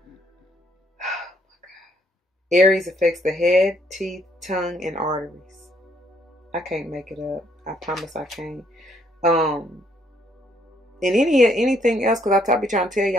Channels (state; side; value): normal; both; correlation 0.69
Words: Aries affects the head, teeth, tongue, and arteries. I can't make it up. I promise I can't. And anything else, because I be trying to tell